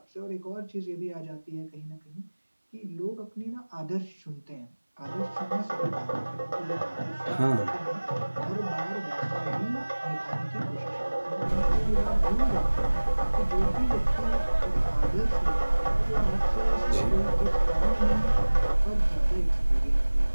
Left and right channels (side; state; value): both; inverted; correlation -1.00